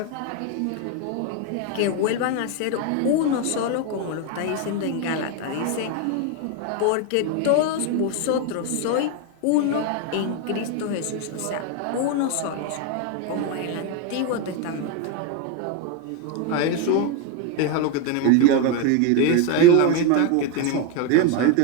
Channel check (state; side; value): different; both; correlation 0.02